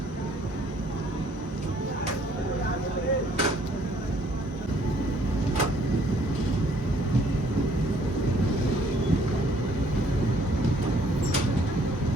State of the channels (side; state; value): both; normal; correlation 0.62